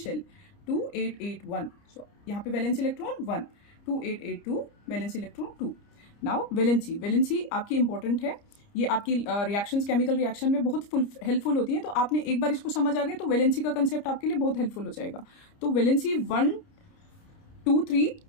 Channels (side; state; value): right; late; 30 ms